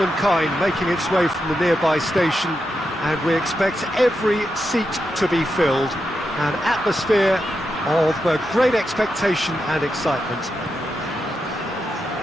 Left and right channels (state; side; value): normal; both; correlation 0.86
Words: making its way from the nearby station, and we expect every seat to be filled. An atmosphere of great expectation and excitement.